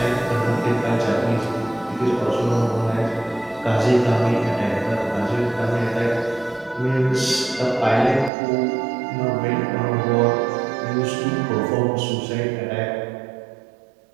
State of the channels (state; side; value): drops out; left; at 8.3 s